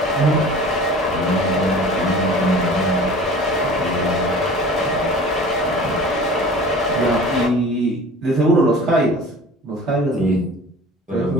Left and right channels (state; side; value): normal; both; correlation 0.42